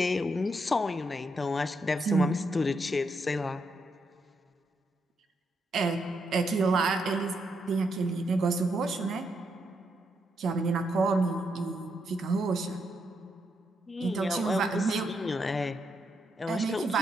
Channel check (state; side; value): normal; both; correlation 0.80